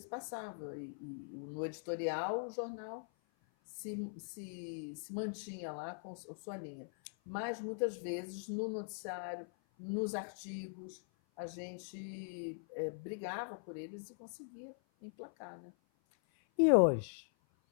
no editorial o jornal se mantinha lá com a sua linha, mas muitas vezes no noticiário, nos artigos, a gente brigava por eles e conseguia emplacar, né? E hoje?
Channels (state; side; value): silent; right; 50 dB below the other